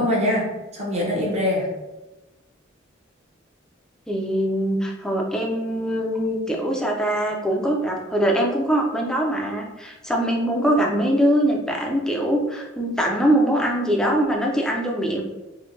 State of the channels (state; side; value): normal; both; correlation 0.58